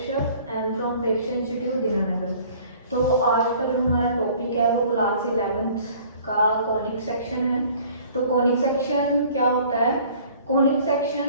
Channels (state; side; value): inverted; both; correlation -0.52